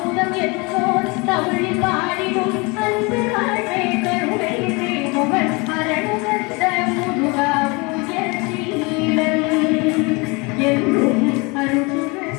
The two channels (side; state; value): right; quieter; 27.6 dB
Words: என்னோர் தமிழில் பாடிடும் அன்பு வாழ்வை கருணை செய்பவன் அரணுகந்த முருகா உயர்சீலன் என்றும்